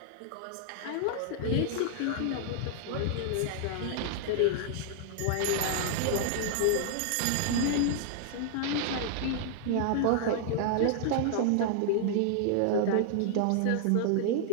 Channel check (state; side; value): different; both; correlation -0.01